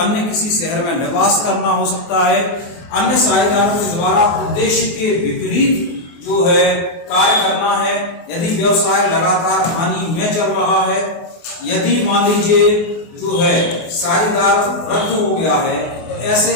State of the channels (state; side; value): late; right; 24 ms